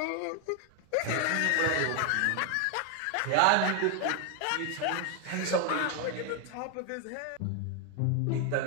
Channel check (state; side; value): different; both; correlation 0.01